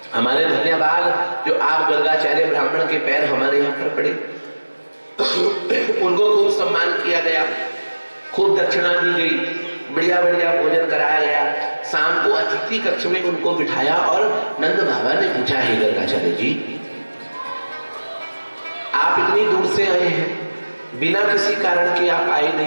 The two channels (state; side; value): inverted; both; correlation -1.00